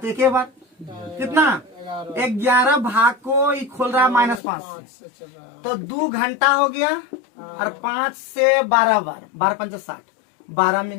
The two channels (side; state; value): right; drops out; at 4.4 s